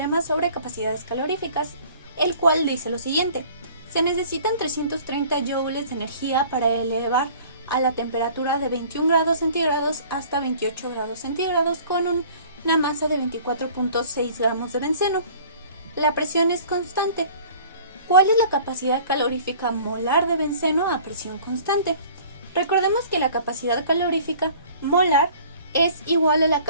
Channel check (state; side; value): inverted; both; correlation -0.49